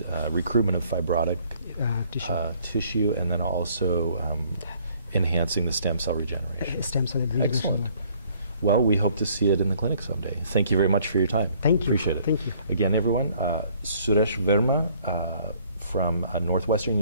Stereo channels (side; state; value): both; inverted; correlation -0.61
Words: recruitment of fibrotic tissue, and then also enhancing the stem cell regeneration. Stem cell regeneration. Excellent. Well, we hope to see it in the clinic someday. Thank you very much for your time. Thank you. Appreciate it. Thank you. Again, everyone, Suresh Verma from Northwestern